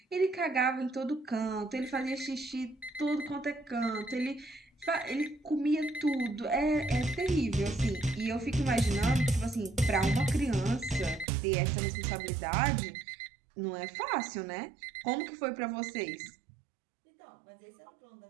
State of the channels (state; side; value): drops out; left; at 11.2 s